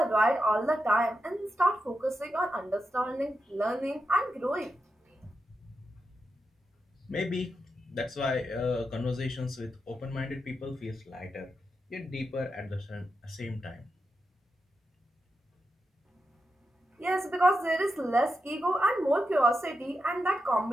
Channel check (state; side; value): normal; both; correlation 0.87